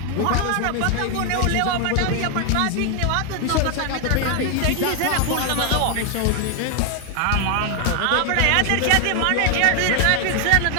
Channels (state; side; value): different; both; correlation 0.00